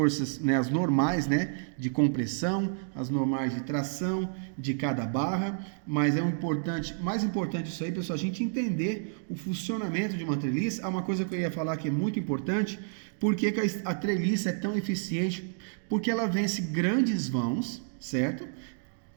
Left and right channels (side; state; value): left; silent; digital silence